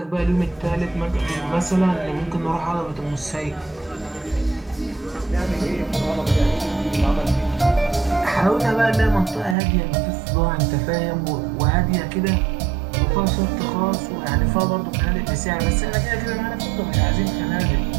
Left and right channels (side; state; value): left; drops out; at 9.6 s